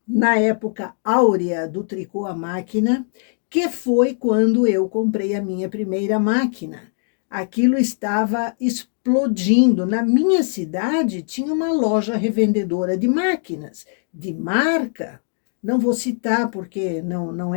na época áurea do tricô à máquina, que foi quando eu comprei a minha primeira máquina? Aquilo estava explodindo. Na minha cidade tinha uma loja revendedora de máquinas, de marca. Não vou citar porque não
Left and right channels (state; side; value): silent; right; 62 dB below the other